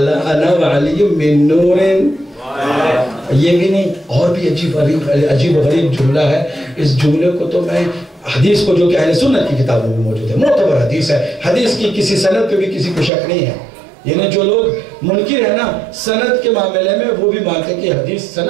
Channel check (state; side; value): drops out; left; at 13.1 s